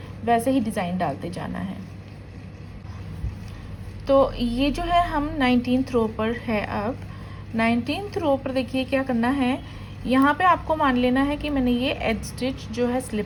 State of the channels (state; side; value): identical; both; correlation 1.00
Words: वैसे ही डिज़ाइन डालते जाना है। तो ये जो है हम 19th रो पर है। अब 19th रो पर देखिए क्या करना है, यहाँ पे आपको मान लेना है कि मैंने ये एज स्टिच जो है